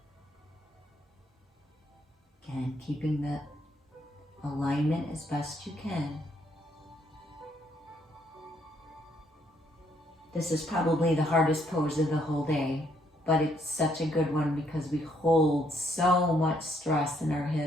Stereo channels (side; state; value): both; normal; correlation 0.71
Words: Again, keeping the alignment as best you can. This is probably the hardest pose of the whole day, but it's such a good one because we hold so much stress in our